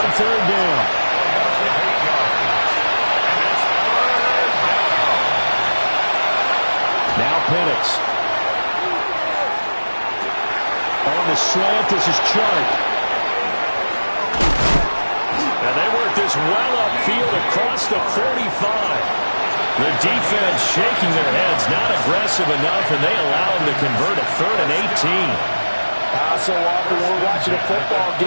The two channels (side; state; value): both; inverted; correlation -1.00